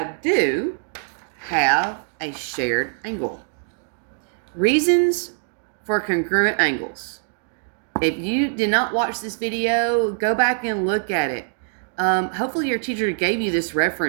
do have a shared angle. Reasons for congruent angles. If you did not watch this video, go back and look at it. Hopefully your teacher gave you this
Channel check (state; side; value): silent; left; digital silence